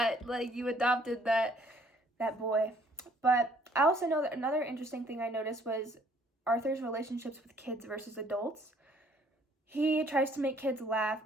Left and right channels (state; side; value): normal; both; correlation 0.61